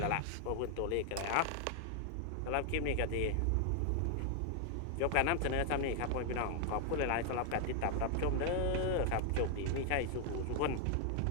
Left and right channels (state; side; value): different; both; correlation 0.00